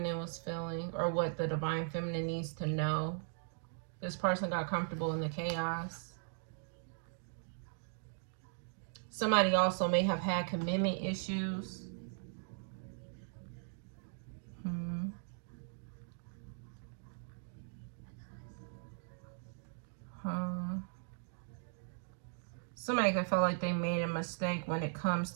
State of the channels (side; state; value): left; silent; digital silence